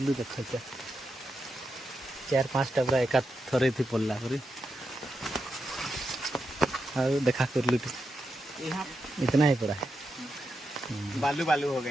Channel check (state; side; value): normal; both; correlation 0.86